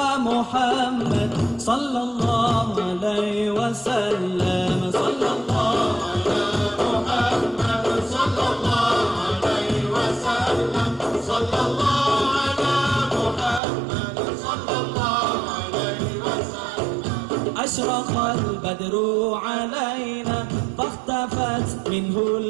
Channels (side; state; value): left; drops out; at 13.6 s